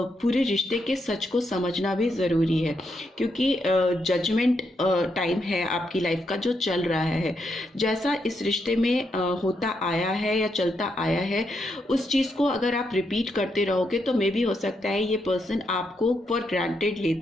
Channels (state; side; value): normal; both; correlation 0.80